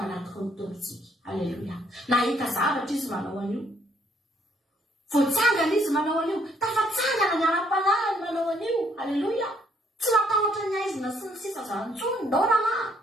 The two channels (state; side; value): normal; both; correlation 0.67